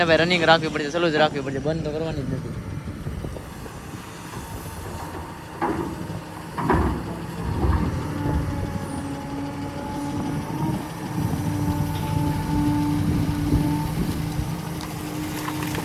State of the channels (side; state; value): both; identical; correlation 1.00